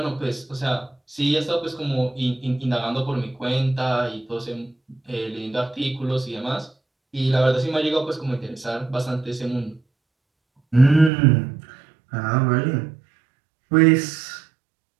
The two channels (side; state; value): left; drops out; at 11.1 s